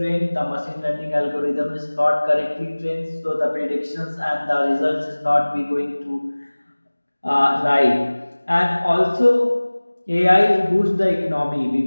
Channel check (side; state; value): both; inverted; correlation -1.00